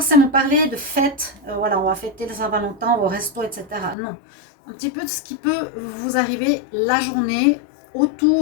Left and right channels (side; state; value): right; drops out; at 4.0 s